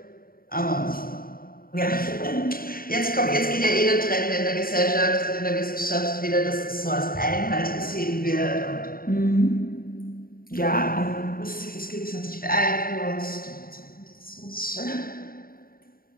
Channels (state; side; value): late; right; 0.42 ms